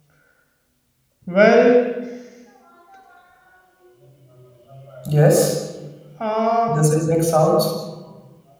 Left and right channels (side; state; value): both; identical; correlation 1.00